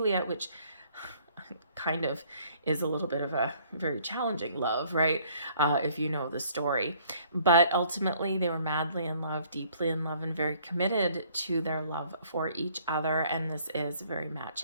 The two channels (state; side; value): inverted; both; correlation -0.60